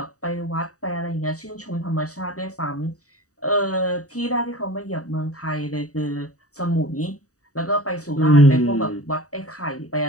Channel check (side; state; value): right; late; 0.66 ms